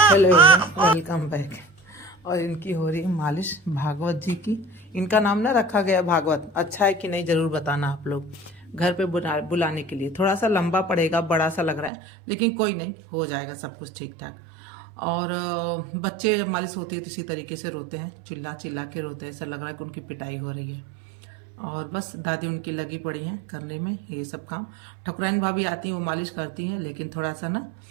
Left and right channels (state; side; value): drops out; left; at 11.9 s